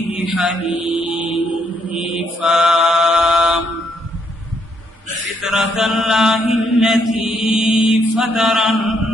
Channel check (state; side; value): normal; both; correlation 0.73